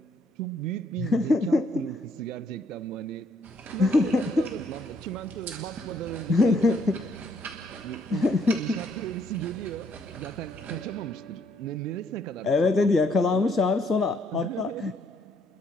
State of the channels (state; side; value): normal; both; correlation 0.69